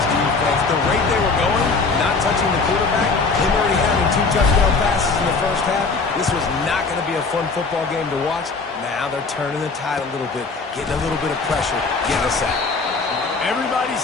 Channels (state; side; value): quieter; right; 4.2 dB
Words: defense. The rate they were going, not touching the quarterback, him already having 2 touchdown passes in the first half, this was not going to be a fun football game to watch. Now they're turning the tide a little bit, getting a little bit of pressure, getting a sack. Everybody